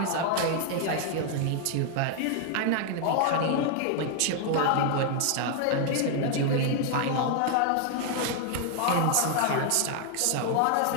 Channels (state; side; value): different; both; correlation 0.00